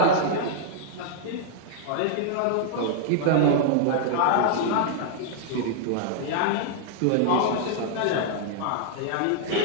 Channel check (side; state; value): both; different; correlation -0.01